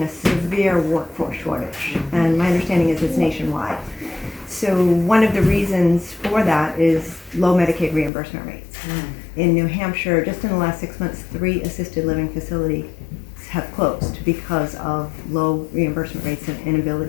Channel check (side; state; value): right; drops out; at 8.1 s